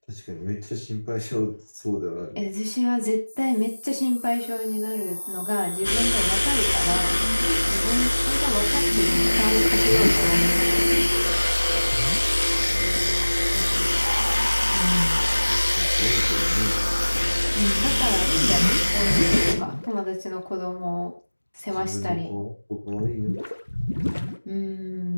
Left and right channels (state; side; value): inverted; both; correlation -1.00